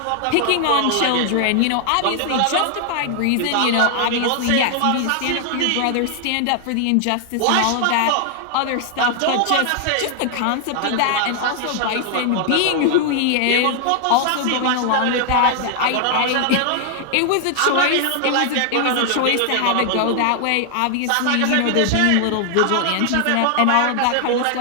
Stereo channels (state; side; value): different; both; correlation 0.00